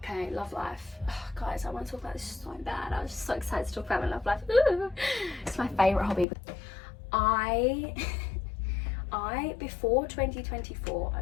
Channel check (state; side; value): drops out; right; at 6.2 s